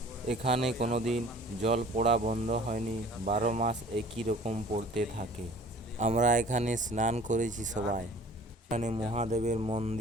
এখানে কোনোদিন জল পড়া বন্ধ হয়নি, 12 মাস একই রকম পড়তে থাকে। আমরা এখানে স্নান করেছি সবাই। এখানে মহাদেবের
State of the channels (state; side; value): normal; both; correlation 0.49